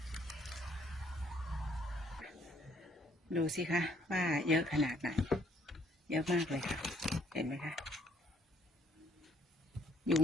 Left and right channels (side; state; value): both; normal; correlation 0.65